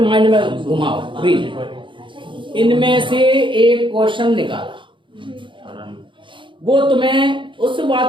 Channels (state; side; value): late; left; 0.24 ms